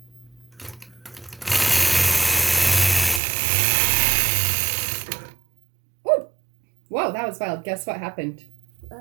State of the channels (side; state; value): left; drops out; at 3.2 s